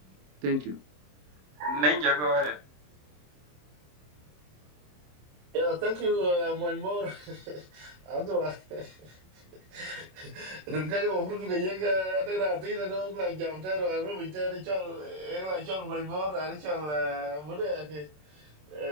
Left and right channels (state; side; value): late; left; 27 ms